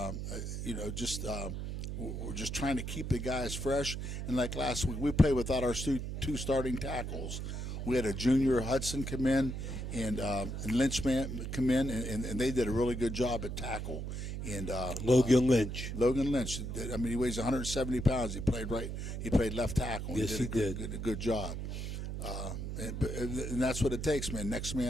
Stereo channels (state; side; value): noise; right; hum, 5 dB below the sound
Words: we're just trying to keep the guys fresh. And like last week, we played without our 2 starting tackles. We had a junior Hudson come in and Lynchman come in, and they did a really good job at tackle. And Logan Lynch. He weighs 170 pounds. He played left tackle. Yes, he did. A good job. And that's what it takes, man. Next